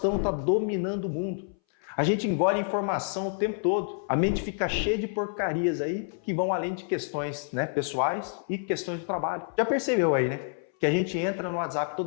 está dominando o mundo. A gente engole informação o tempo todo. A mente fica cheia de porcarias aí que vão além de questões, né, pessoais e questões do trabalho. Já percebeu aí, né? Que a gente entra no WhatsApp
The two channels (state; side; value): silent; right; 59 dB below the other